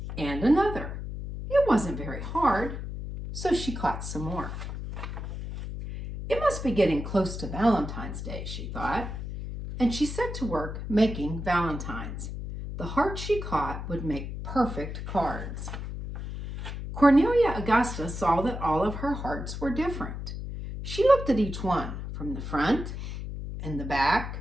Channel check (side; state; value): left; noise; hum, 7 dB below the sound